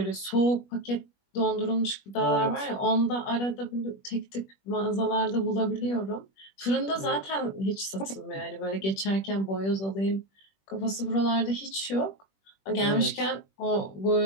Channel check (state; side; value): late; right; 21 ms